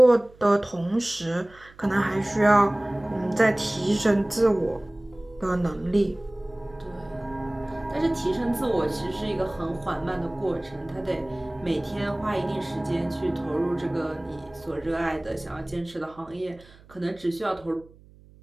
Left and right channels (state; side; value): noise; right; hum, 25 dB below the sound